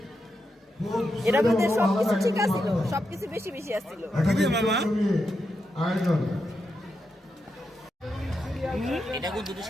এটার মধ্যে সবকিছু ঠিক আছিল, সবকিছু বেশি বেশি আসছিল। আয়োজন এটা কিন্তু দুটো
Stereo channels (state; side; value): normal; both; correlation 0.85